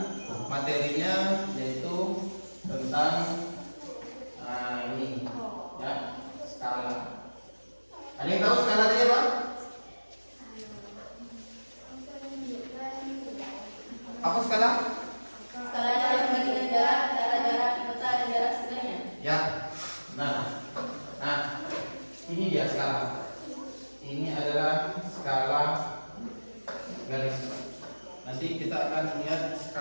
materinya yaitu tentang ini, ya, skala. Ada yang tahu skala tadi apa? Apa skala? Skala adalah perbandingan jarak antara jarak di peta dan jarak sebenarnya. Ya. Nah, ini dia skala. Ini adalah skala garis. Nanti kita akan melihat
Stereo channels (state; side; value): inverted; both; correlation -1.00